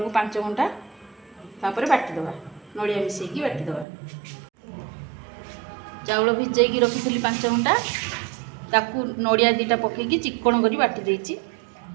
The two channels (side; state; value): left; drops out; at 3.9 s